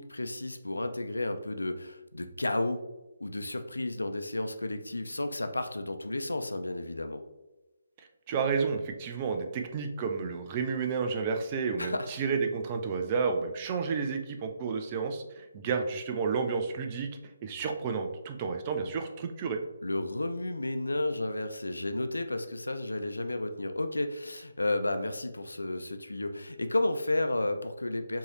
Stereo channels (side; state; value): both; inverted; correlation -0.78